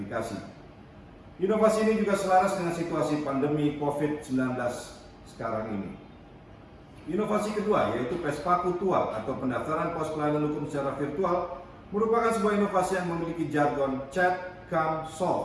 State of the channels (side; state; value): both; identical; correlation 1.00